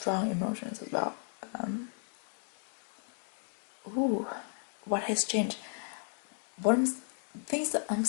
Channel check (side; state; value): right; silent; 55 dB below the other